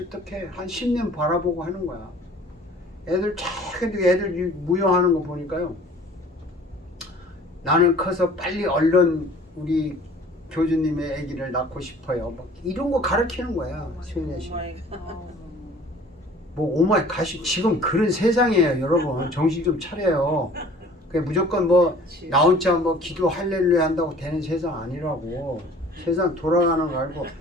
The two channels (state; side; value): normal; both; correlation 0.49